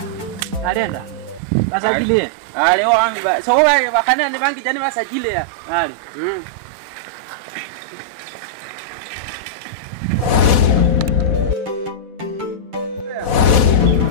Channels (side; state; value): left; late; 4.1 ms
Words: Alienda. Basajili. Leo wangu so wewe bakana ni bangi jani basajili ya. Ali.